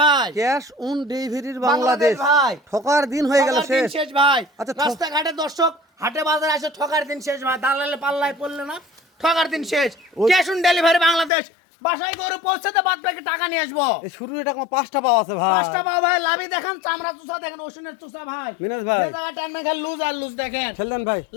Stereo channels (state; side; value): drops out; right; at 11.3 s